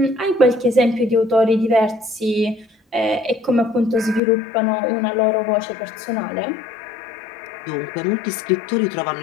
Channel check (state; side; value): drops out; right; at 4.2 s